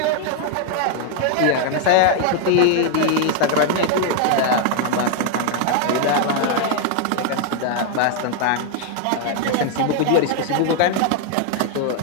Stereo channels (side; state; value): both; different; correlation 0.00